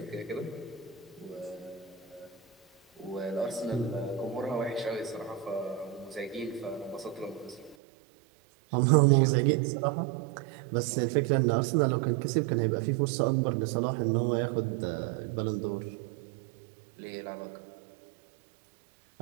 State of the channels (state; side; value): drops out; left; at 7.8 s